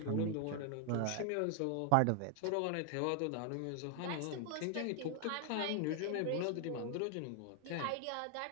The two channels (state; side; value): different; both; correlation 0.00